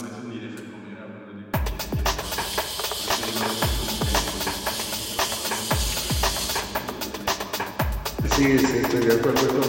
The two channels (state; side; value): identical; both; correlation 1.00